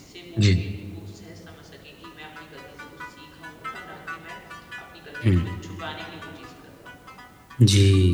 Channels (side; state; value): both; identical; correlation 1.00